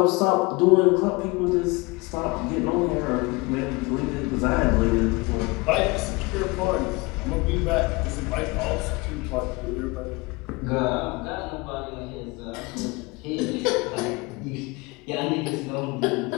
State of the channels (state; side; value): quieter; right; 25.2 dB